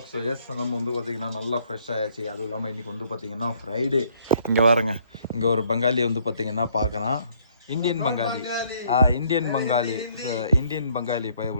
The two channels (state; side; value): inverted; both; correlation -0.65